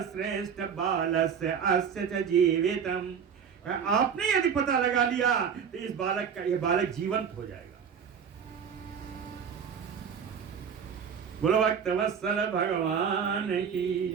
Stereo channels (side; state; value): left; quieter; 7.2 dB